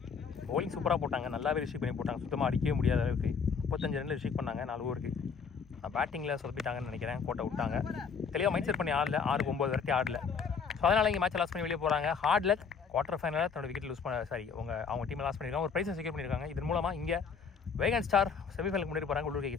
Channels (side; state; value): right; quieter; 6.0 dB